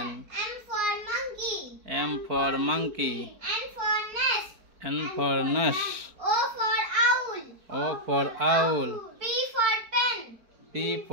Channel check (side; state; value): left; late; 4.6 ms